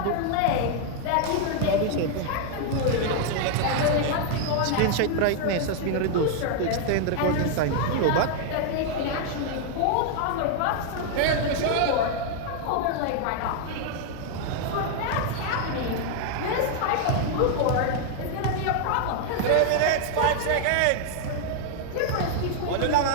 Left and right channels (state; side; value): different; both; correlation 0.00